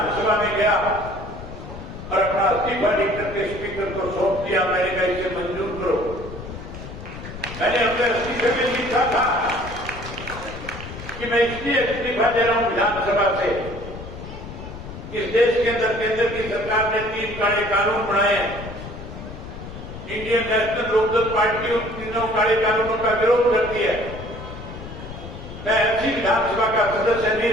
में गया और अपना इस्तीफा लिख करके स्पीकर को सौंप दिया। मैंने कहा इसे मंजूर करो। मैंने अपने इस्तीफे में लिखा था कि मैं इसलिए इस्तीफा दे रहा हूं विधानसभा से, इस देश के अंदर केंद्र की सरकार ने 3 काले कानून बनाए हैं। इंडियन नेशनल लोकदल पार्टी उन 3 काले कानूनों का विरोध करती है। मैं ऐसी विधानसभा का सदस्य नहीं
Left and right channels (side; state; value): left; noise; rumble, 11 dB below the sound